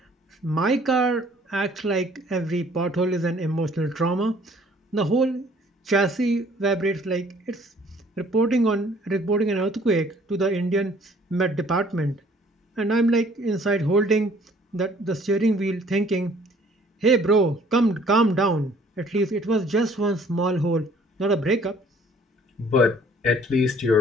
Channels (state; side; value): normal; both; correlation 0.57